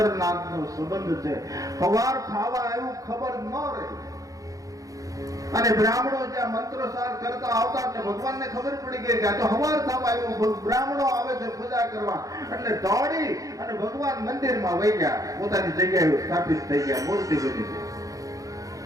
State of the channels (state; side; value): late; left; 0.17 ms